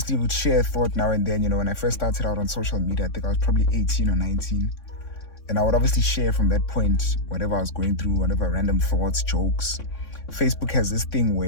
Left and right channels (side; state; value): right; late; 3.6 ms